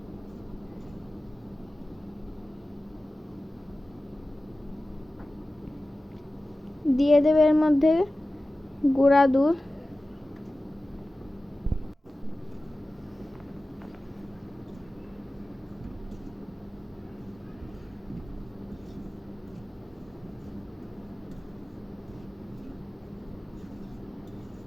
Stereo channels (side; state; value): both; normal; correlation 0.96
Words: দিয়ে দেবে এর মধ্যে গুঁড়া দুধ।